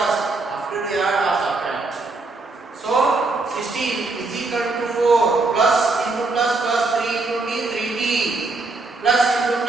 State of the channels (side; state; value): left; quieter; 3.5 dB